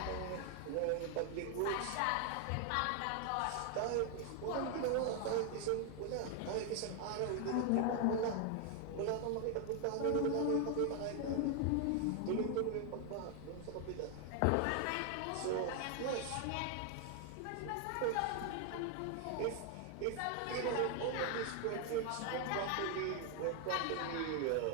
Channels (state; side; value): different; both; correlation 0.00